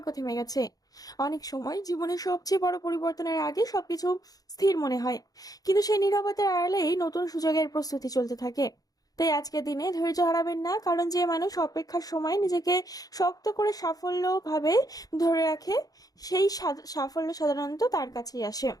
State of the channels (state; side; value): late; right; 0.18 ms